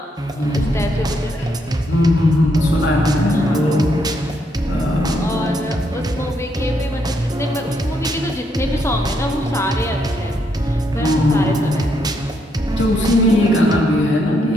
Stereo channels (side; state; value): both; normal; correlation 0.76